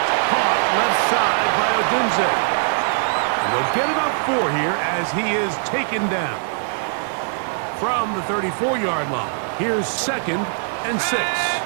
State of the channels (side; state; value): left; silent; digital silence